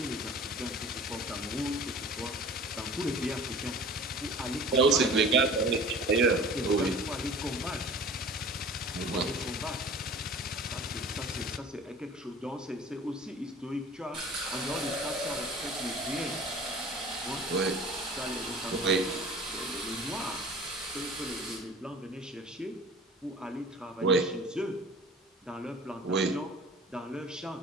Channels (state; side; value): normal; both; correlation 0.43